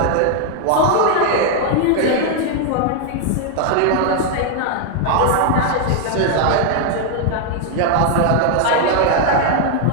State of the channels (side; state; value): both; different; correlation 0.00